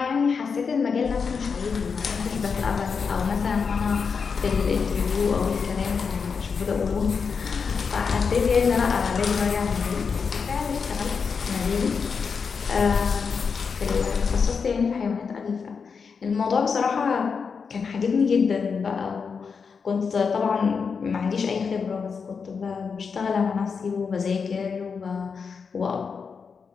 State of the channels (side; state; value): right; quieter; 5.7 dB